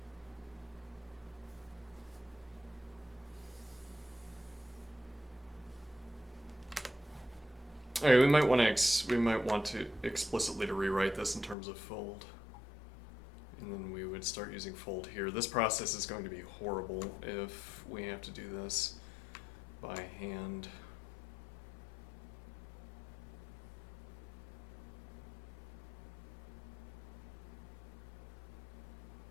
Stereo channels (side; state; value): right; drops out; at 11.6 s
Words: All right, we might want to explicitly to rewrite this in terms of fold, and then we would start using fold here. This process is going to be horrible if we have to do this by hand.